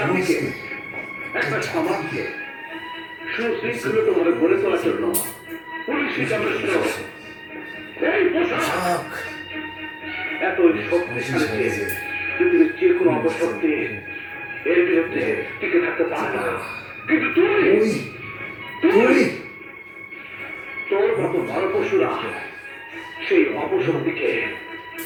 একটা সমাজকে সুশৃঙ্খলভাবে গড়ে তোলার জন্য পুলিশই যথেষ্ট। এই পোশাক এত শক্তিশালী যে পৃথিবীর যে কোনো অপশক্তি এর বিরুদ্ধে টিকে থাকতে পারে না। কিন্তু তুই তোর মতো নরপশুরা সেই অপশক্তিকে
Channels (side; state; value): both; identical; correlation 1.00